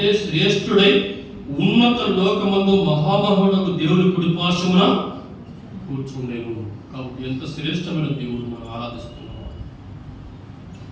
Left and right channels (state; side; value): identical; both; correlation 1.00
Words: శ్రేష్ఠుడై ఉన్నత లోకమందు మహామహుడకు దేవుని కుడిపార్శ్వమున కూర్చుండేను. కాబట్టి ఎంత శ్రేష్టమైన దేవుడు మనం ఆరాధిస్తున్నాం.